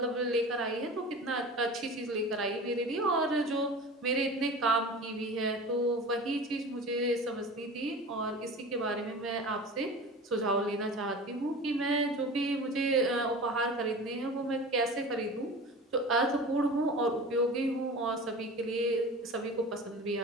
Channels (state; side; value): normal; both; correlation 0.35